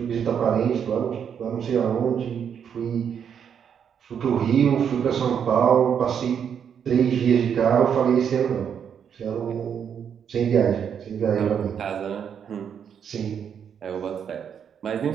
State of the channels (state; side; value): quieter; left; 7.9 dB